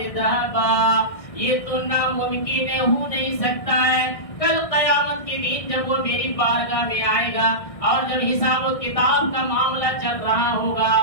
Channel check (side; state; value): right; late; 1.6 ms